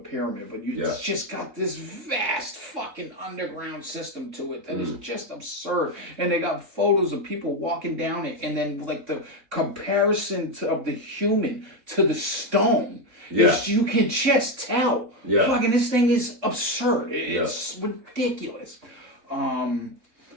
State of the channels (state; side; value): late; left; 3.6 ms